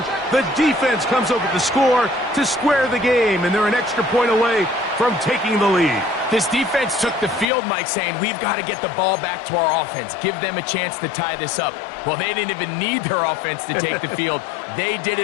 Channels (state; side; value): drops out; right; at 7.5 s